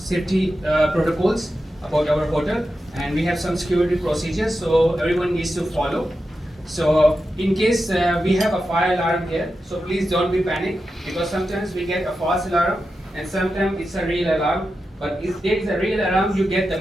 protocols about our hotel. And we have some security procedures, so everyone needs to follow. So in case we have a fire alarm here, so please don't be panic because sometimes we get a false alarm and sometimes it's a real alarm. But if there is a real alarm, you get the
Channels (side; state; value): both; normal; correlation 0.90